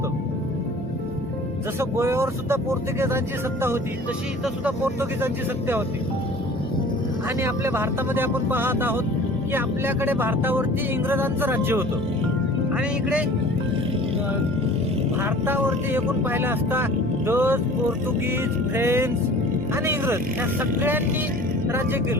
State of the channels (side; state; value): both; normal; correlation 0.45